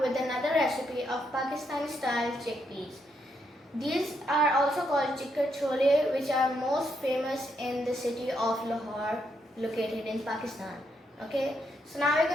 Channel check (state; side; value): normal; both; correlation 0.78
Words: another recipe of Pakistani style chickpeas. These are also called Chikar Cholay, which are most famous in the city of Lahore, located in Pakistan. Okay, so now we're